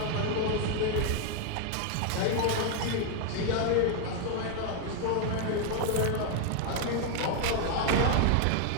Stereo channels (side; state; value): both; different; correlation 0.00